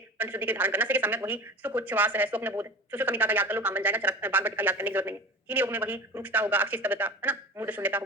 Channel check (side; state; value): both; normal; correlation 0.34